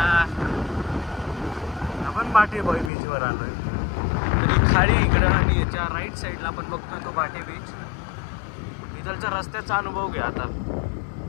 आपण भाटे बीचवर आलोय. खाडी इकडं आणि याच्या राईट साईडला आपण बघतोय तो भाटे बीच. इथलच्या रस्त्याचा अनुभव घ्या आता.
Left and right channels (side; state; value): right; drops out; at 2.9 s